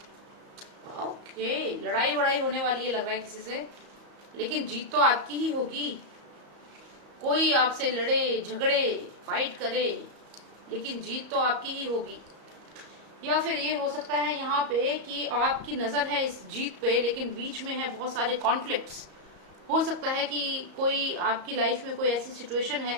Okay, लड़ाई वड़ाई होने वाली है लग रहा है किसी से, लेकिन जीत तो आपकी ही होगी। कोई आपसे लड़े, झगड़े, फाइट करे, लेकिन जीत तो आपकी ही होगी। या फिर ये हो सकता है यहाँ पे कि आपकी नजर है इस जीत पे, लेकिन बीच में है बहुत सारे कॉन्फ्लिक्ट्स। हो सकता है कि कोई आपकी लाइफ में कोई ऐसी सिचुएशन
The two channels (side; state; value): left; late; 34 ms